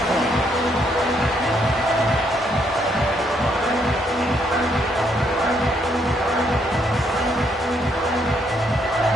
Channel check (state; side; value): normal; both; correlation 0.72